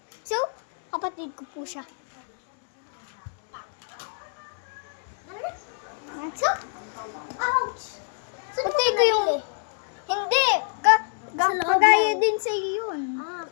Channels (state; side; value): silent; right; digital silence